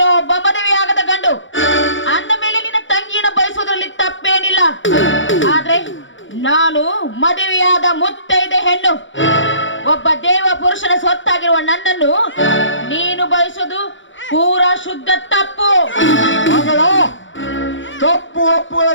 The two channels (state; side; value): late; right; 0.56 ms